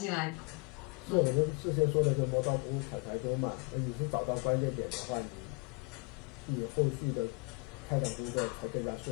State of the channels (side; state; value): right; quieter; 32.0 dB